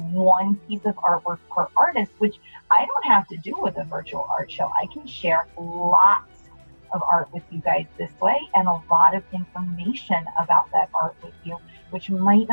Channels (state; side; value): inverted; both; correlation -1.00